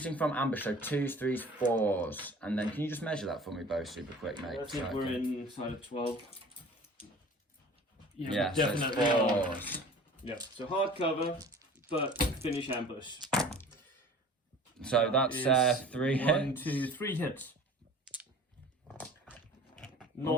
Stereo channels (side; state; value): both; normal; correlation 0.44